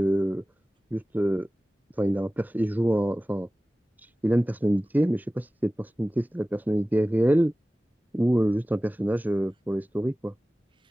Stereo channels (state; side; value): normal; both; correlation 0.97